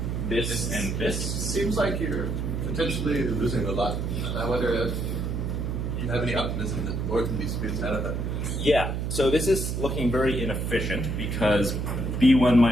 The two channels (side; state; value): right; noise; hum, 2 dB below the sound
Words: This and this. Seems like you're potentially losing a lot. I wonder if you have any optimism that the board can be squeezed out of that. Yeah, so this is looking very inefficient because B1